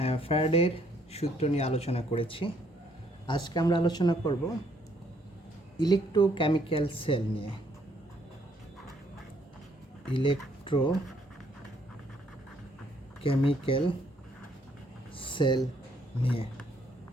ফ্যারাডের সূত্র নিয়ে আলোচনা করেছি। আজকে আমরা আলোচনা করব ইলেকট্রোকেমিক্যাল সেল নিয়ে। ইলেকট্রোকেমিক্যাল সেল নিয়ে।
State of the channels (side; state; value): both; normal; correlation 0.68